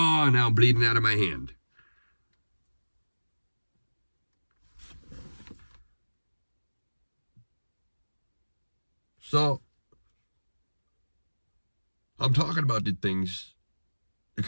now I'm bleeding out of my hand. So, I'm talking about these things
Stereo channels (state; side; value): inverted; both; correlation -1.00